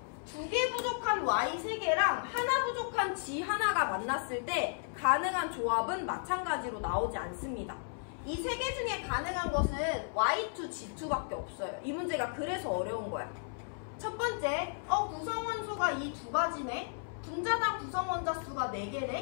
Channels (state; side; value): silent; right; 55 dB below the other